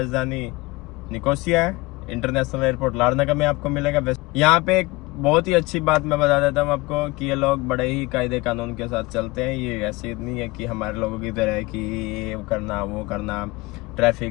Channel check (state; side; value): quieter; right; 22.5 dB